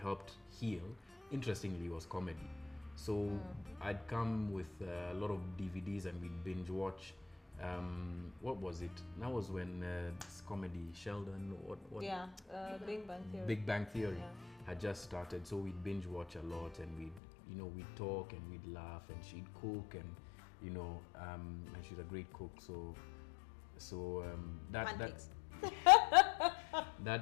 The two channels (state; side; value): drops out; right; at 17.2 s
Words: heal, interestingly, was comedy. So I'd come with a lot of DVDs and we'd binge watch What was it? That was when this comedy Sheldon, Big Bang Theory. Big Bang Theory Yeah. had just started, so we'd binge watch a lot, and we'd talk and we'd laugh, and she'd cook, and and she's a great cook, so Pancakes.